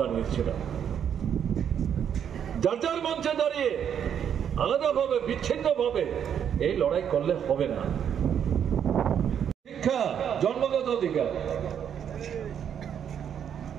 জানিয়েছিলাম, যার যার মঞ্চে দাঁড়িয়ে আলাদাভাবে, বিচ্ছিন্নভাবে এই লড়াই করলে হবে না। শিক্ষা জন্মগত অধিকার,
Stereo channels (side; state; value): left; quieter; 8.6 dB